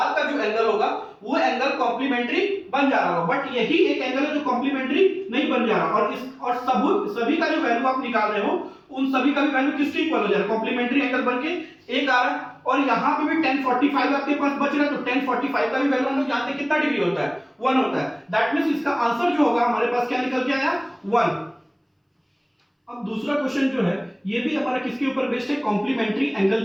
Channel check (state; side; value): identical; both; correlation 1.00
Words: का जो एंगल होगा वो एंगल कॉम्प्लीमेंट्री बन जा रहा होगा। बट यही एक एंगल है जो कॉम्प्लीमेंट्री नहीं बन जा रहा। और सभी का जो वैल्यू आप निकाल रहे हो उन सभी का भी वैल्यू किसके इक्वल हो जा रहा है, कॉम्प्लीमेंट्री एंगल बनके एक आ रहा है। और यहाँ पे भी tan 45 आपके पास बच रहा है तो tan 45 का भी वैल्यू हम लोग जानते हैं कितना डिग्री होता है, 1 होता है। दैट मींस इसका आंसर जो होगा हमारे पास क्या निकल के आया, 1। अब दूसरा क्वेश्चन जो है ये भी हमारा किसके ऊपर बेस्ड है, कॉम्प्लीमेंट्री एंगल